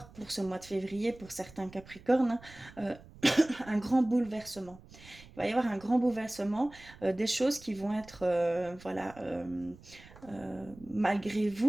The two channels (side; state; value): right; noise; rumble, 21 dB below the sound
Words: pour ce mois de février, pour certains Capricornes, un grand bouleversement. Il va y avoir un grand bouleversement, des choses qui vont être, voilà, malgré